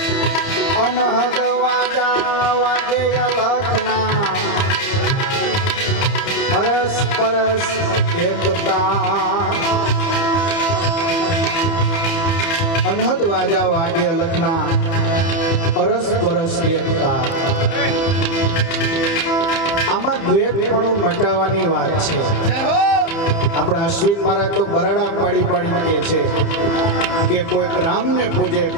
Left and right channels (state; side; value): late; right; 30 ms